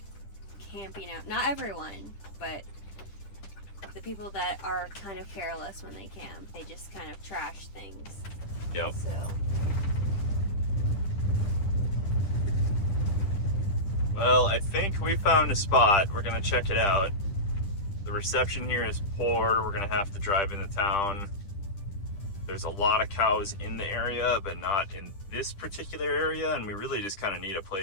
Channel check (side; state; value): right; late; 10 ms